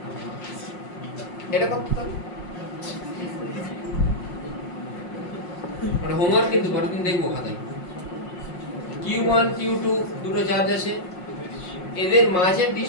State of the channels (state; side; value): late; right; 5.6 ms